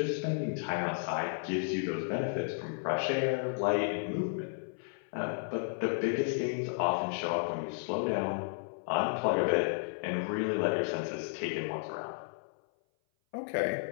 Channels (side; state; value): right; silent; 56 dB below the other